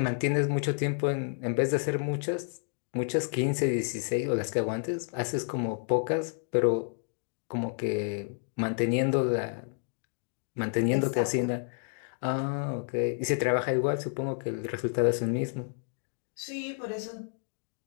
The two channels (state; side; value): silent; right; 58 dB below the other